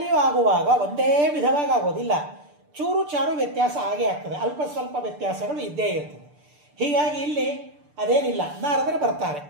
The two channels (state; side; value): late; left; 6.8 ms